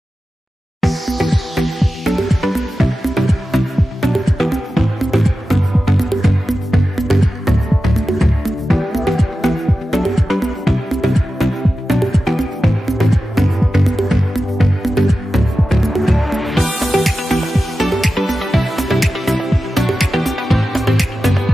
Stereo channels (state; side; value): normal; both; correlation 0.93